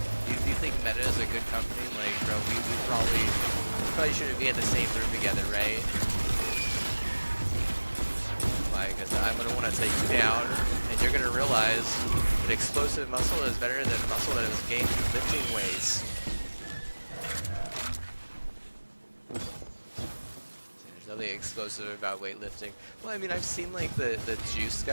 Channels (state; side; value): inverted; both; correlation -1.00